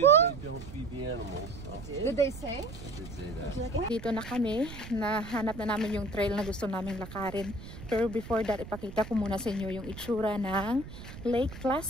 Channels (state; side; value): noise; right; rumble, 13 dB below the sound